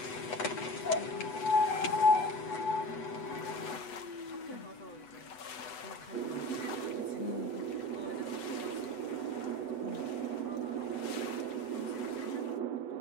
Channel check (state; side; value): late; right; 8.1 ms